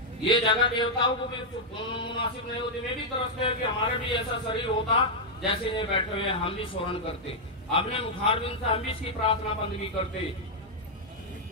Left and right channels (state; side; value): normal; both; correlation -0.03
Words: ये जगह देवताओं को भी मुनासिब नहीं होती। वे भी तरसते हैं कि हमारे भी ऐसा शरीर होता जैसे ये बैठे हुए, हम भी स्मरण करते, अपने मुखारबिंद से हम भी इसकी प्रार्थना बंदगी करते।